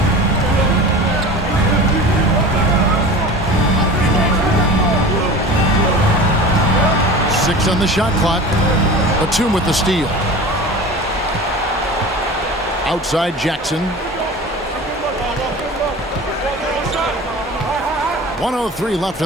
Six on the shot clock. Batum with the steal. Outside Jackson. 1:03 left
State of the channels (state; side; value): normal; both; correlation 0.35